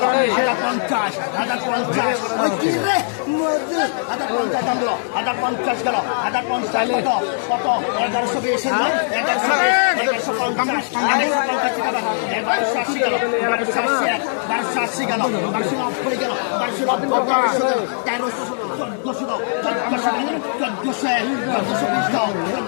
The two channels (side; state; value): right; silent; 66 dB below the other